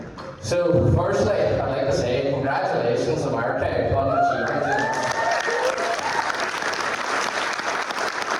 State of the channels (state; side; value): identical; both; correlation 1.00